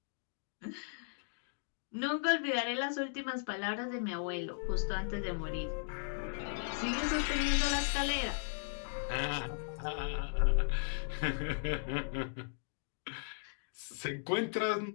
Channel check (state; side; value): silent; right; digital silence